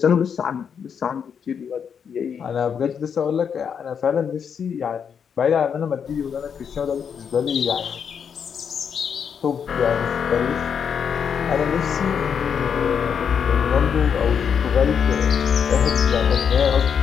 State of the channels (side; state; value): right; quieter; 7.2 dB